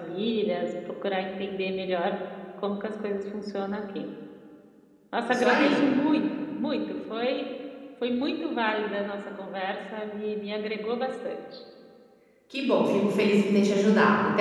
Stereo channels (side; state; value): both; identical; correlation 1.00